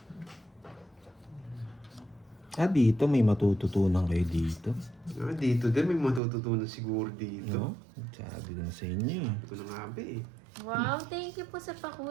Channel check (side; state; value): left; drops out; at 6.2 s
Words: Dito may matututunan kayo dito. Dito din, may matututunan siguro dito. No? Sabi ko na sa inyo eh. Ito na nga ba eh. Wow, thank you po sa